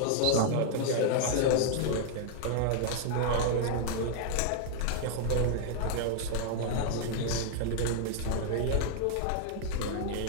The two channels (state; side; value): different; both; correlation -0.01